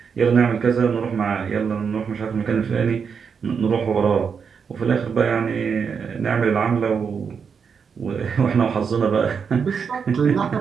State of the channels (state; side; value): quieter; left; 6.3 dB